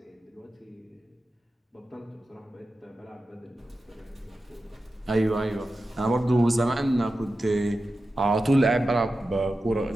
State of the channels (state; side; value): normal; both; correlation 0.92